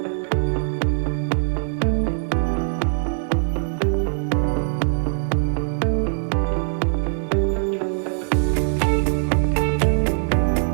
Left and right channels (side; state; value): left; silent; 64 dB below the other